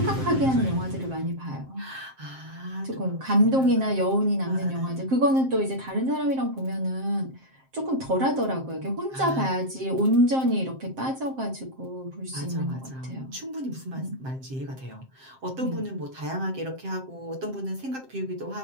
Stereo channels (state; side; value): late; left; 7.6 ms